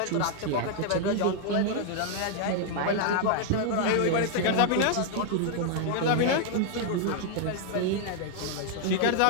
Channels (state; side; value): different; both; correlation 0.00